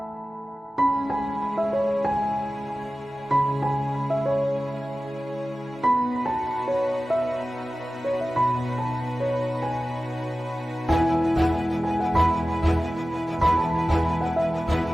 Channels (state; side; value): normal; both; correlation 0.96